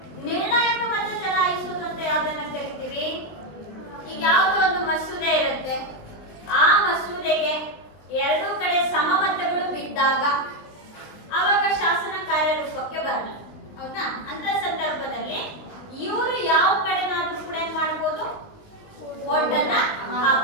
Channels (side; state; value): right; late; 19 ms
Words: ನಿರ್ಣಾಯಕ ಮತ ಚಲಾಯಿಸುವುದು ಅಂತ ಯಾವ್ದನ್ನ ಕರಿತೀವಿ? ಈಗ ಯಾವುದೋ ಒಂದು ಮಸೂದೆ ಇರುತ್ತೆ, ಆ ಮಸೂದೆಗೆ ಎರಡೂ ಕಡೆ ಸಮಮತಗಳು ಬಿದ್ದಾಗ ಆವಾಗ ಶಾಸನ ಕಾರ್ಯರೂಪಕ್ಕೆ ಬರಲ್ಲ, ಹೌದಾ? ಅಂತ ಸಂದರ್ಭದಲ್ಲಿ ಇವರು ಯಾವ ಕಡೆನಾದ್ರೂ ಕೂಡ ಏನ್ ಮಾಡ್ಬೋದು? ಓಟನ್ನ